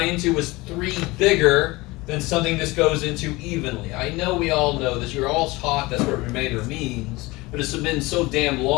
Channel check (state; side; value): quieter; right; 21.9 dB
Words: into was 3 bigger than something this goes into evenly. I know we all know this. You're all taught that's what remainder means, but it's been so damn